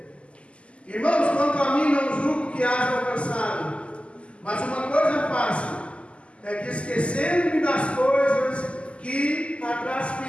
Irmãos, quanto a mim, não julgo que haja alcançado, mas uma coisa faço, é que esquecendo-me das coisas que atrás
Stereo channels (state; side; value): late; right; 0.056 ms